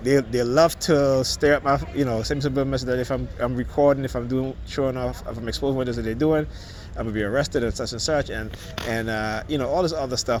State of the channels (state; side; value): identical; both; correlation 1.00